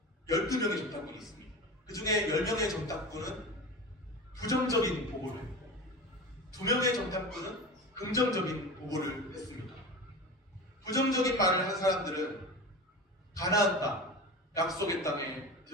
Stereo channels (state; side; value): normal; both; correlation 0.30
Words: 12명의 정탐꾼이 있습니다. 그 중에 10명의 정탐꾼은 부정적인 보고를 했고 2명의 정탐꾼은 긍정적인 보고를 했습니다. 부정적인 말을 한 사람들은 가나안 땅, 약속의 땅에